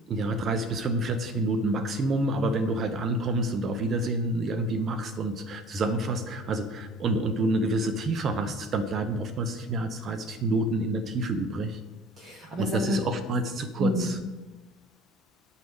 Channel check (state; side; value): normal; both; correlation 0.47